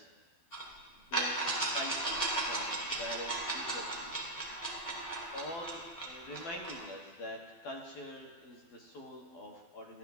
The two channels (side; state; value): right; late; 12 ms